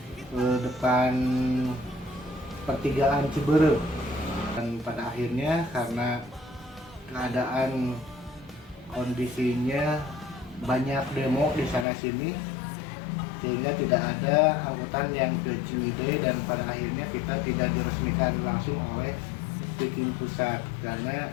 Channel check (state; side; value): drops out; right; at 11.9 s